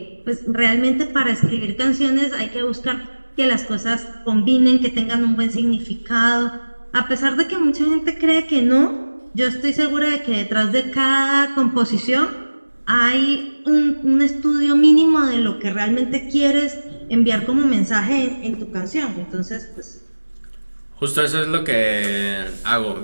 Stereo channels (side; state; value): both; inverted; correlation -1.00